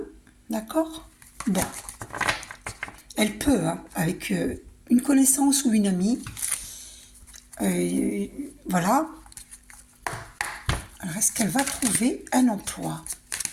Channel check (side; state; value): both; identical; correlation 1.00